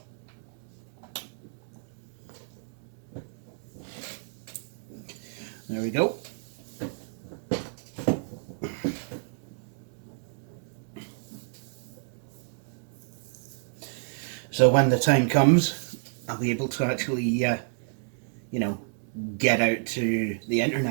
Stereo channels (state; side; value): silent; left; digital silence